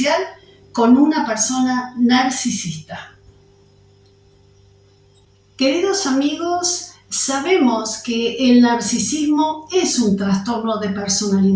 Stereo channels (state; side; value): identical; both; correlation 1.00